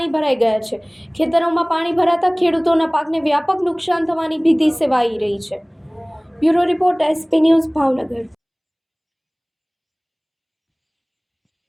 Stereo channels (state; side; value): identical; both; correlation 1.00